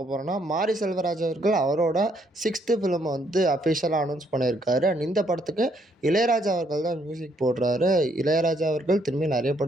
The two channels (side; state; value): both; normal; correlation 0.70